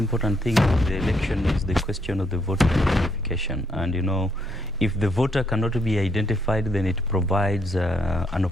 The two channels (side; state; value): both; normal; correlation 0.73